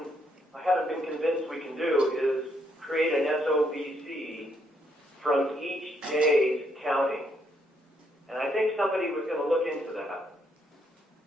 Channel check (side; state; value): both; normal; correlation 0.74